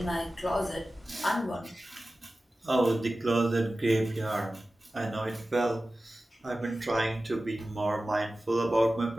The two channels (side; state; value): both; normal; correlation 0.95